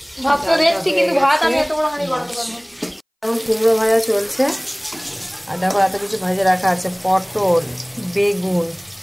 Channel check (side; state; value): both; identical; correlation 1.00